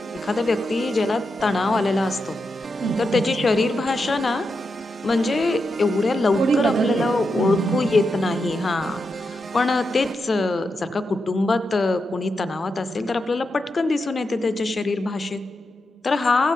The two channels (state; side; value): normal; both; correlation 0.86